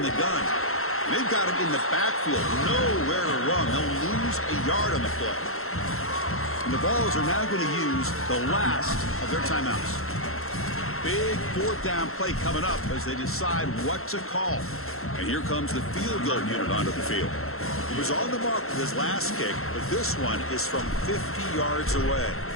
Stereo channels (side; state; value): right; late; 0.62 ms